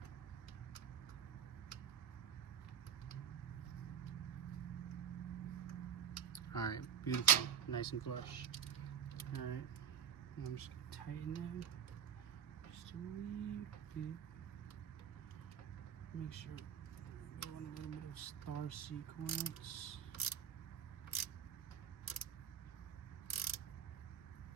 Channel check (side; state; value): left; quieter; 8.4 dB